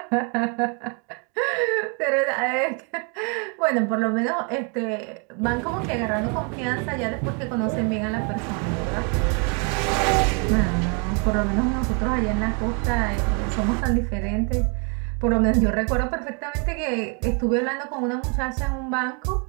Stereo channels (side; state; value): left; quieter; 36.5 dB